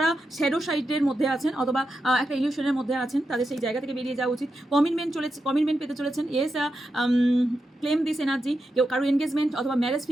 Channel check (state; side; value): normal; both; correlation 0.88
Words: শ্যাডো সাইডের মধ্যে আছেন অথবা একটা ইলিউশনের মধ্যে আছেন, তাদের সেই জায়গা থেকে বেরিয়ে যাওয়া উচিত। কমিটমেন্ট পেতে চলেছেন। Yes, claim this energy. কেউ কারো এনগেজমেন্ট অথবা ম্যারেজ